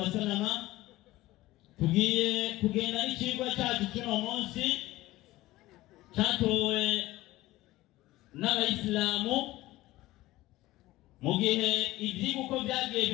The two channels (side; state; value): right; quieter; 17.6 dB